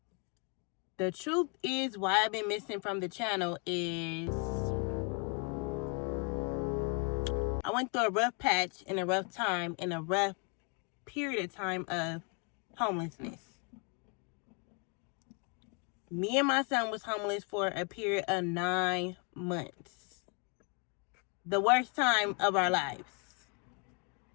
The truth is, why I've been missing from the channel is I went through a rough patch and a rough time and a rough period of time of homelessness. Me and my son was homeless for a period of 9 months. The worst time of our lives.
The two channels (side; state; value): right; quieter; 35.6 dB